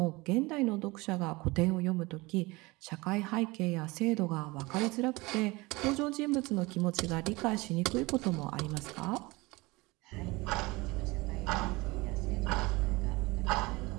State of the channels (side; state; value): left; quieter; 23.0 dB